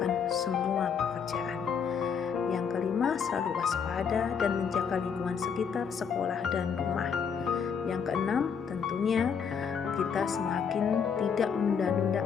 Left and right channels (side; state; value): right; quieter; 6.7 dB